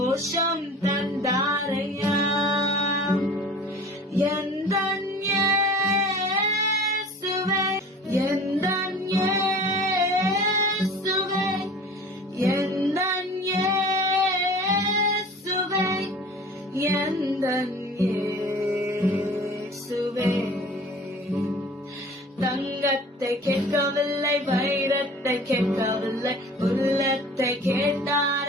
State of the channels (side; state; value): both; normal; correlation 0.43